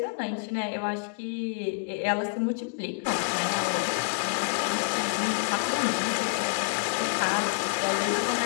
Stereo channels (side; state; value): right; silent; digital silence